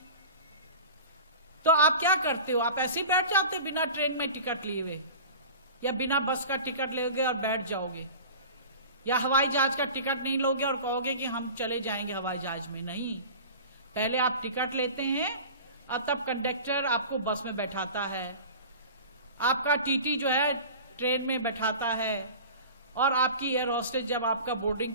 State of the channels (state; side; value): inverted; both; correlation -0.37